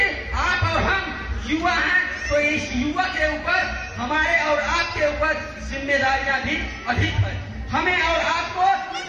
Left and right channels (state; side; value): identical; both; correlation 1.00